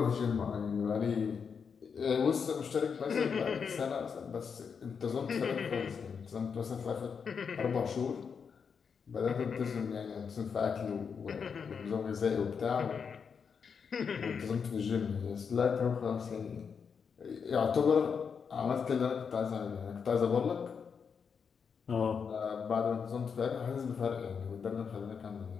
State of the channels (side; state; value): right; quieter; 6.3 dB